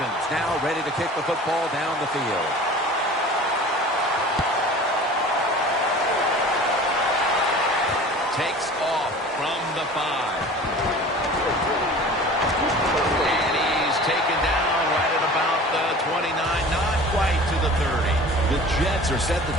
now ready to kick the football down the field. Takes off from the 5. And he's taken down right at about the 29, not quite to the 30. The Jets are set to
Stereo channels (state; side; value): normal; both; correlation 0.41